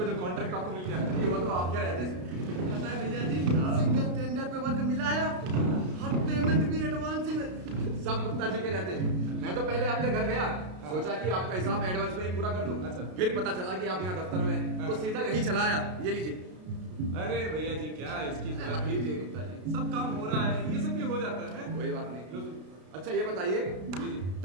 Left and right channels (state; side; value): late; left; 33 ms